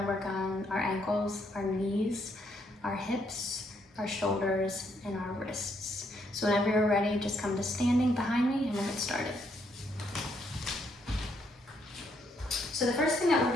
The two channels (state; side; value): normal; both; correlation 0.73